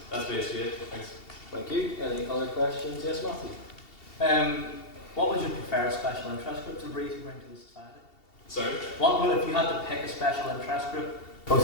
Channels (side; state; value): right; late; 2.7 ms